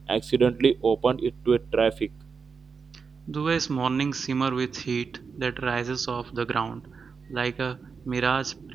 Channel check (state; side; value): quieter; left; 5.4 dB